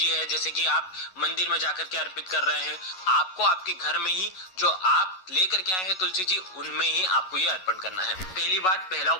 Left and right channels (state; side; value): late; right; 11 ms